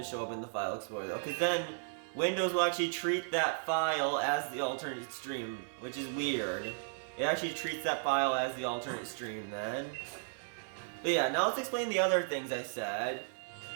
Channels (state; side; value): silent; left; 54 dB below the other